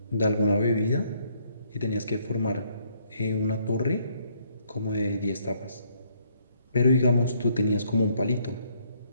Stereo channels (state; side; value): inverted; both; correlation -0.68